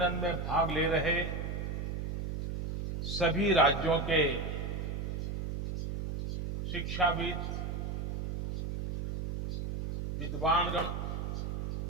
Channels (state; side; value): noise; right; hum, 3 dB below the sound